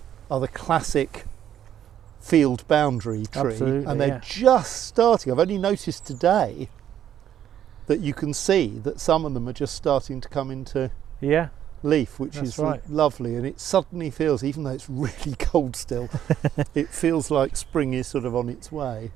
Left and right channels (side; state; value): left; quieter; 10.4 dB